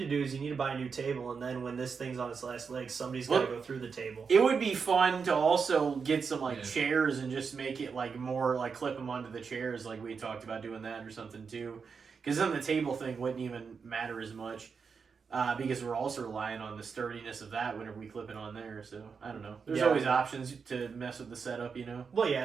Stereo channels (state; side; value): quieter; left; 5.6 dB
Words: do is you need to buy a new table, and then when this thing's on its last legs, somebody's got to go through the table. It would be fun to also get some like Yeah. chairs and just make it like more like clip them onto the chairs, like we talked about doing that or something too. Because then the table thing wouldn't even matter as much. Because we're also relying on the sturdiness of that whenever we clip it on there. So I don't know. There's Yeah. always options to mess with the setup, you know. Well, yeah,